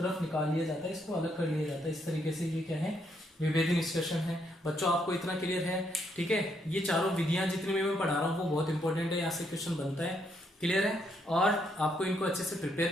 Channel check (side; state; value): both; normal; correlation 0.75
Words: निकाल लिया जाता है, इसको अलग कर लिया जाता है। इस तरीके से ये क्या है, विभेदी निष्कर्षण है। बच्चों आपको इतना क्लियर है, ठीक है। ये चारों विधियां जितनी मैं पढ़ा रहा हूँ वो बहुत इंपॉर्टेंट है, यहाँ से क्वेश्चन बनता है, क्लियर है। और आपको इनको अच्छे से